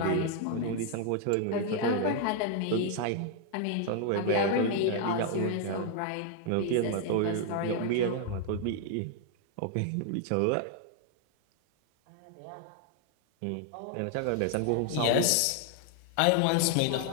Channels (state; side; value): different; both; correlation 0.00